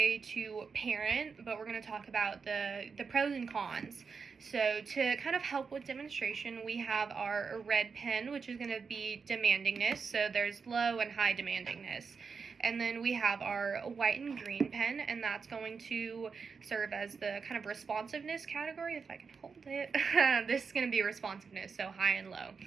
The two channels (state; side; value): quieter; left; 5.4 dB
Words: to parent, but we're going to talk about the pros and cons. So to kind of help with demonstration, we have our red pen, which is going to be demandingness. So there's low and high demandingness. And then we have our white and green pen, and that's going to serve as the kind of responsiveness category, if I can hold it. This is going to be responsiveness, so high and low.